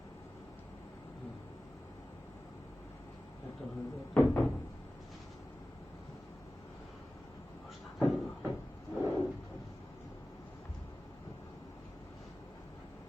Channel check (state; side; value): normal; both; correlation 0.96